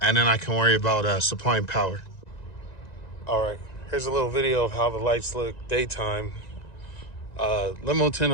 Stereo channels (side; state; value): right; late; 1.9 ms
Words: and then I can worry about supplying power. All right, here's a little video of how the lights look daytime. Limo tint